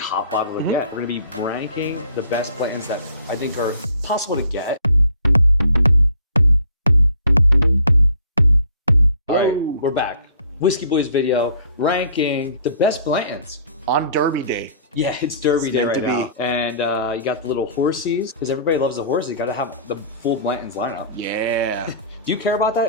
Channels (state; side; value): inverted; both; correlation -0.53